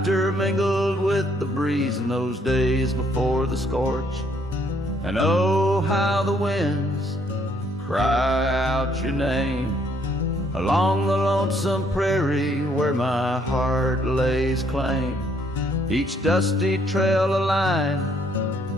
mingled with the breeze in those days before the scorch. And oh, how the winds cry out your name along the lonesome prairie where my heart lays claim. Each dusty trail a line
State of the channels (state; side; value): normal; both; correlation 0.68